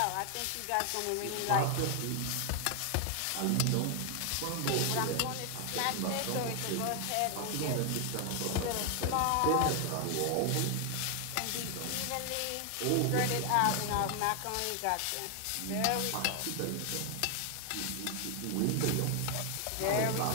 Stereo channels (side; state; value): both; different; correlation 0.00